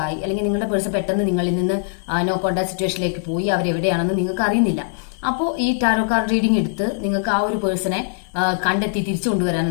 അല്ലെങ്കിൽ നിങ്ങളുടെ പേഴ്സൺ പെട്ടെന്ന് നിങ്ങളിൽ നിന്ന് നോ കോണ്ടാക്ട് സിറ്റുവേഷനിലേക്ക് പോയി അവരെവിടെയാണെന്ന് നിങ്ങൾക്ക് അറിയുന്നില്ല. അപ്പോൾ ഈ ടാരോ കാർഡ് റീഡിംഗ് എടുത്ത് നിങ്ങൾക്ക് ആ ഒരു പേഴ്സണെ കണ്ടെത്തി തിരിച്ചു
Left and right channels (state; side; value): silent; right; digital silence